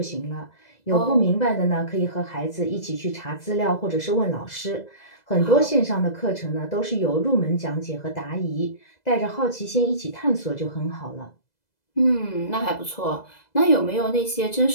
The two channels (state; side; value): late; right; 2.0 ms